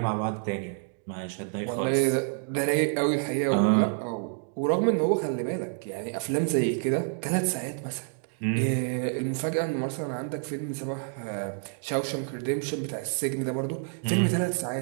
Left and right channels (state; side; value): silent; left; 59 dB below the other